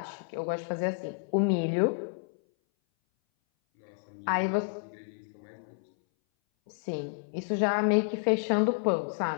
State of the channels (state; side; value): silent; right; 58 dB below the other